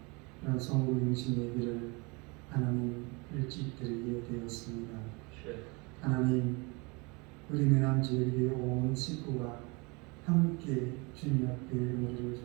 그런 성부용신 예배를 하나님 일찍 드리게 되었습니다. 하나님, 우리 내남지역의 온 식구가 함께 주님 앞에 머리를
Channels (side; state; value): left; quieter; 28.6 dB